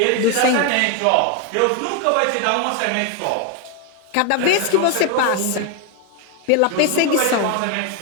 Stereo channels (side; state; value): both; different; correlation 0.01